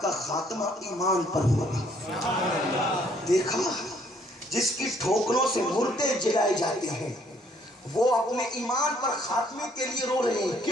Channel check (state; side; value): normal; both; correlation 0.65